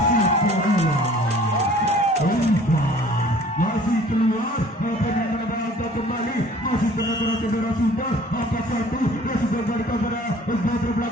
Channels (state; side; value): normal; both; correlation 0.51